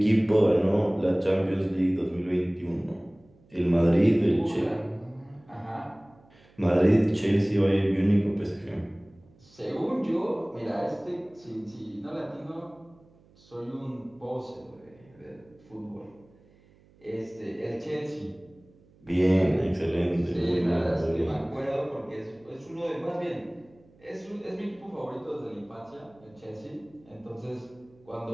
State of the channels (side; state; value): right; noise; hum, 29 dB below the sound